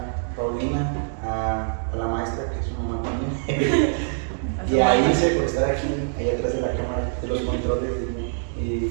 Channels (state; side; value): silent; left; digital silence